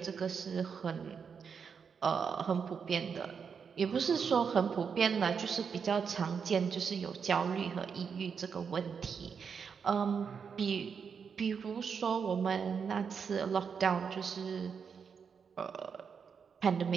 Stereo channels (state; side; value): quieter; left; 6.3 dB